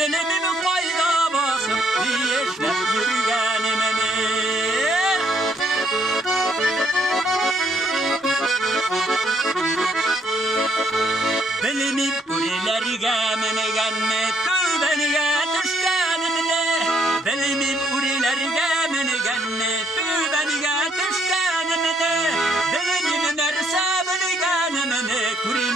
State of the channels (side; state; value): both; normal; correlation 0.69